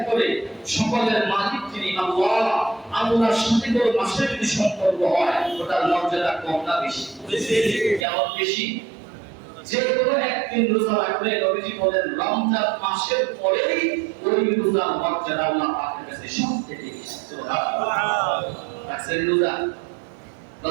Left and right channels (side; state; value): left; drops out; at 8.1 s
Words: করে সকলের মালিক যিনি আল্লাহ, আল্লাহর সাথে কোনো মাসের যদি সম্পর্ক হয় ওটার মর্যাদা কম না বেশি? কেমন বেশি? যে কোনো একদিন রোজা রাখলে নবীজি বলেন রমজান মাসের পরেই ওই রোজার মর্যাদা আল্লাহ পাকের কাছে সবথেকে বেশি। সুবহানাল্লাহ। রাখছেন রোজা?